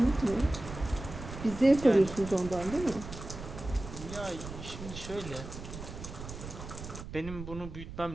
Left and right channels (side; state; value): right; noise; rumble, 10 dB below the sound